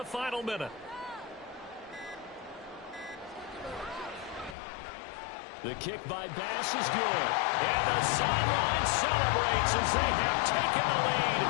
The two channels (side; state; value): right; drops out; at 4.5 s